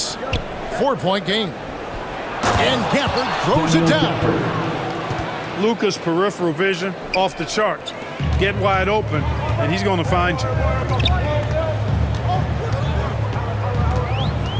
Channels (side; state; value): both; identical; correlation 1.00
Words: 4-point game. And Gafford throws it down. Luka's peripheral vision off the charts. Get wide open, and he's going to find you.